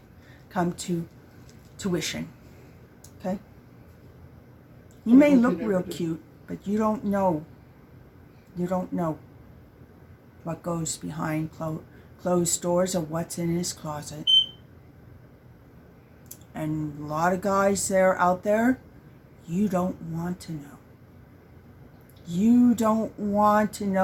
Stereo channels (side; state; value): both; identical; correlation 1.00